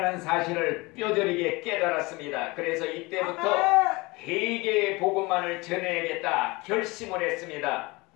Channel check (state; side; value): quieter; right; 24.1 dB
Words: 사실을 뼈저리게 깨달았습니다. 그래서 이때부터 회개의 복음만을 전해야겠다 결심을 했습니다.